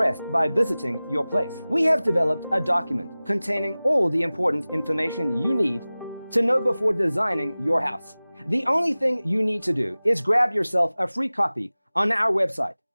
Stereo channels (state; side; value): inverted; both; correlation -0.98